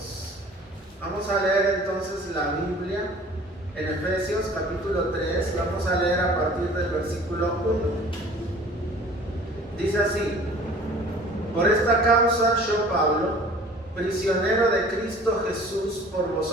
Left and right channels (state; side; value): normal; both; correlation 0.48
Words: Vamos a leer entonces la Biblia en Efesios capítulo 3. Vamos a leer a partir del versículo 1. Dice así: por esta causa yo, Pablo, prisionero de Cristo Jesús por